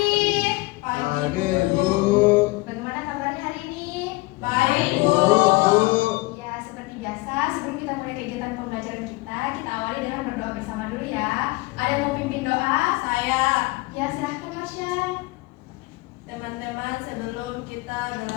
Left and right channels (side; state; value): right; quieter; 23.3 dB